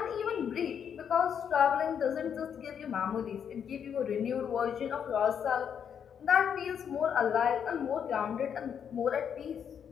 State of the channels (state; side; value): quieter; right; 7.9 dB